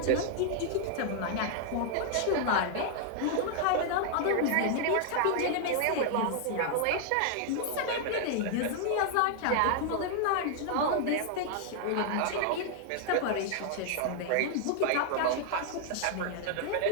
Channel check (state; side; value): different; both; correlation 0.00